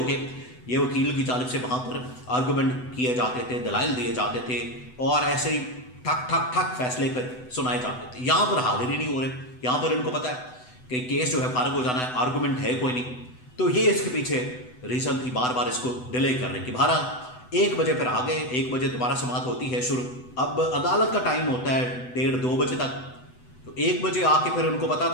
کے یہ وکیل کی جانب سے وہاں پر آرگومنٹ کیے جاتے تھے، دلائل دیے جاتے تھے، اور ایسے ہی ٹھک ٹھک ٹھک فیصلے پہ سنائے جاتے تھے۔ یہاں پر حاضر ہی نہیں ہو رہے، یہاں پر ان کو پتہ ہے کہ کیس جو ہے فارغ ہو جانا ہے، آرگومنٹ ہے کوئی نہیں، تو یہ اس کے پیچھے ریزن تھی بار بار اس کو ڈیلے کرنے کی۔ بہرحال 1 بجے پھر آ گئے، 1 بجے دوبارہ سماعت ہوتی ہے شروع۔ اب عدالت کا ٹائم ہوتا ہے 1:30-2 بجے تک، تو 1 بجے آ کے پھر ان کو پتا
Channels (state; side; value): late; right; 8.0 ms